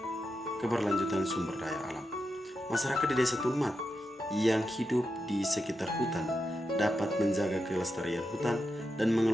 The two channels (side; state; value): both; normal; correlation 0.87